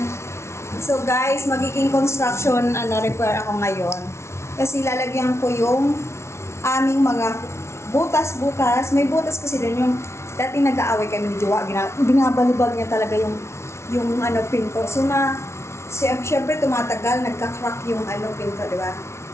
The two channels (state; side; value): late; right; 0.13 ms